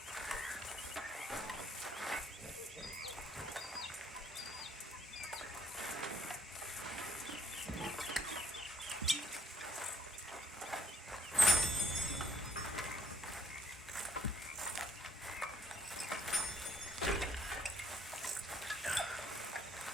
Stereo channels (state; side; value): normal; both; correlation 0.67